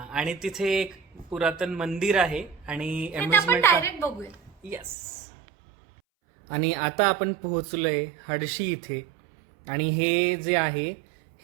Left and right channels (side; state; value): left; drops out; at 5.0 s